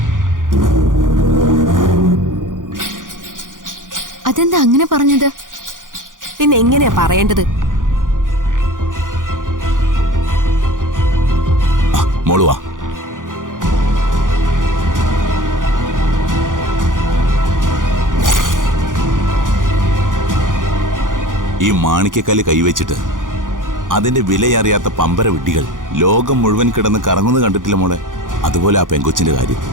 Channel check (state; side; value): late; left; 0.88 ms